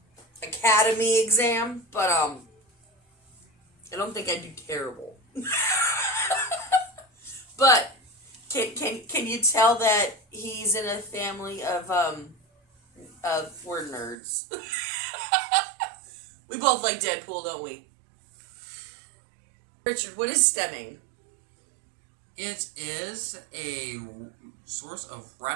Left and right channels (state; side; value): drops out; left; at 14.2 s